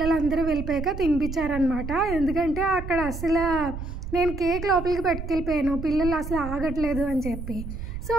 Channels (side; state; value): right; noise; rumble, 7 dB below the sound